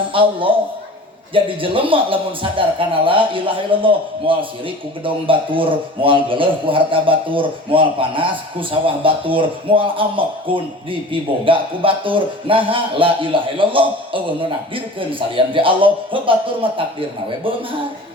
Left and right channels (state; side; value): normal; both; correlation 0.39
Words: Allah jadi jelema lamun sadar kana la ilaha illallah moal sirik ku gedong batur moal geuleuh ku harta batur moal panas ku sawah batur moal amek kun dipiboga ku batur naha la ilaha illallah eueuh nu nakdirkeun salian ti Allah heuh batur mah takdirna we beunghar